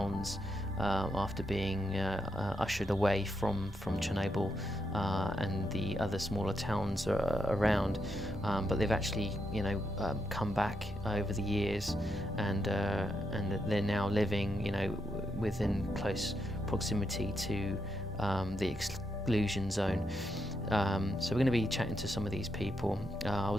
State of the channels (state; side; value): normal; both; correlation 0.82